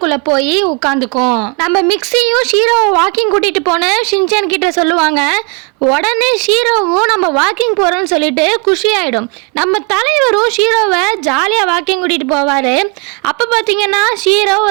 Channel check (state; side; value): quieter; left; 31.8 dB